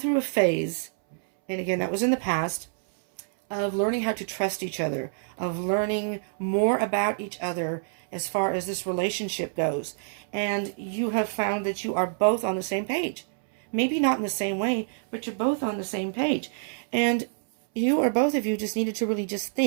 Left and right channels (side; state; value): left; silent; 60 dB below the other